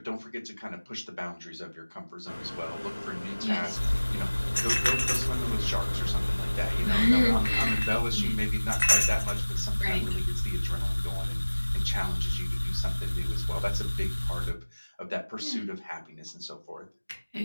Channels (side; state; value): both; inverted; correlation -1.00